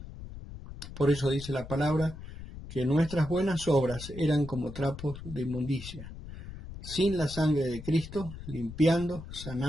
Por eso dice la palabra que nuestras buenas obras eran como trapos de inmundicia, sin la sangre de Cristo, limpiando,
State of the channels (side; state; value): left; noise; rumble, 12 dB below the sound